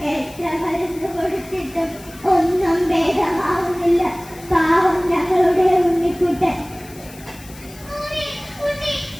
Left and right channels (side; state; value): left; noise; hiss, 20 dB below the sound